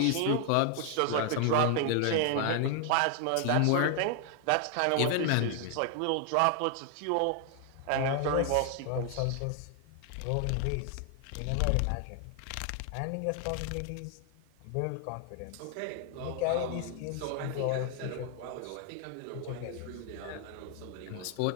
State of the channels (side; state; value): both; different; correlation 0.00